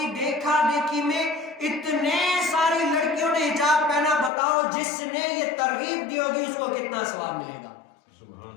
دیکھا دیکھی میں اتنے ساری لڑکیوں نے حجاب پہنا. بتاؤ جس نے یہ ترغیب دی ہوگی اس کو کتنا ثواب ملے گا،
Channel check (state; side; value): drops out; right; at 4.3 s